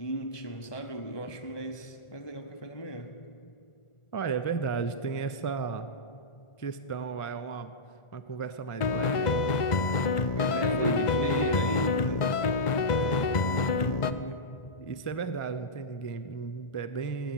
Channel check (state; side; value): late; right; 1.4 ms